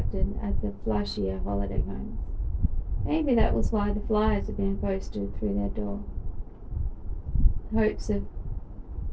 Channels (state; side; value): identical; both; correlation 1.00